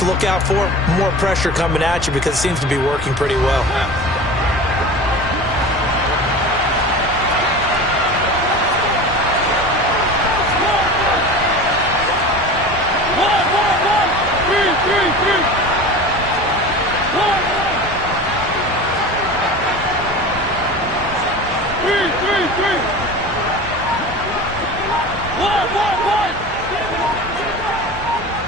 look out for? More pressure coming at you because it seems to be working pretty well.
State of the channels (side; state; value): both; normal; correlation 0.34